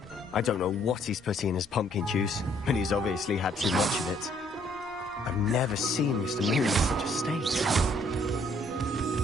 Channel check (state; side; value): normal; both; correlation 0.65